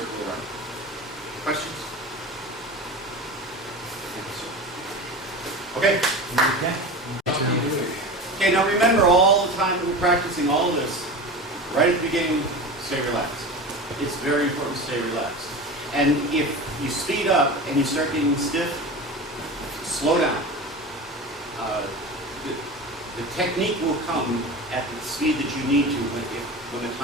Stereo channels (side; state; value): both; normal; correlation 0.30